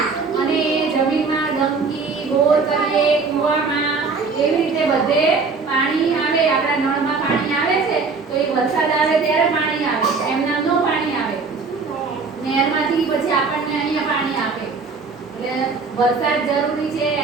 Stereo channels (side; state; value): left; quieter; 4.5 dB